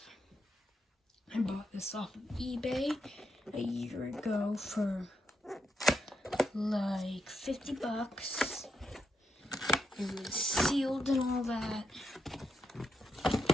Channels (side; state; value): both; normal; correlation 0.82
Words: I bought this off of eBay a year ago for like 50 bucks. It was sealed and all that.